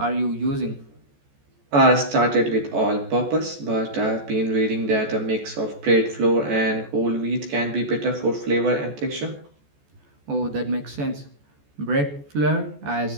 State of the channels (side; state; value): left; late; 14 ms